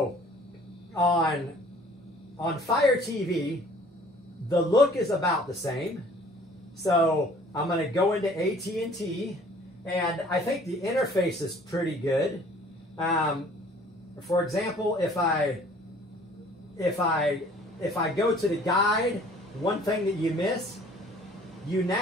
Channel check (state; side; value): normal; both; correlation 0.53